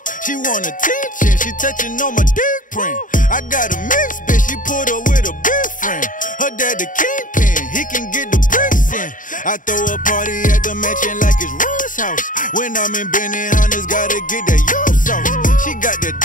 She want attention, she touching on my dick print. I got a mix, bitch, she put her with a big friend. Her dad the kingpin, he can get the bricks in. I throw a party at the mansion like it's Ron's house. When I'm in Benny Hunters, gotta get that yo sauce. She got the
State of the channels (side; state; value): right; late; 0.38 ms